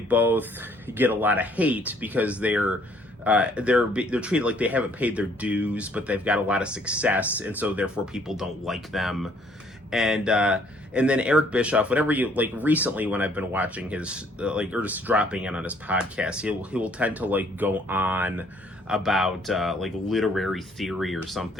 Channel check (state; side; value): normal; both; correlation 0.63